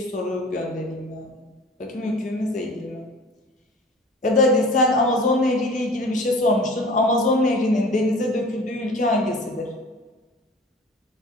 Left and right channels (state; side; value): normal; both; correlation 0.43